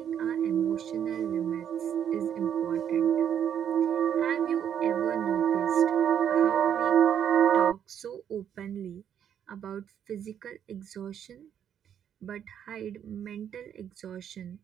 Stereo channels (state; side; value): quieter; left; 9.1 dB